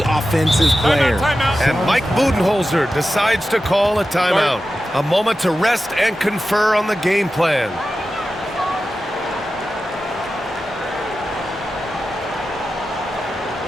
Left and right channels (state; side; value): normal; both; correlation 0.92